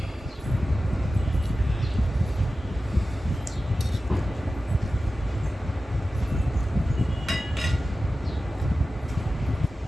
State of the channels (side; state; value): both; normal; correlation 0.94